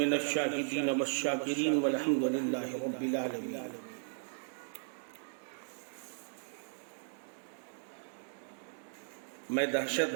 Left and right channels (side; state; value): left; silent; digital silence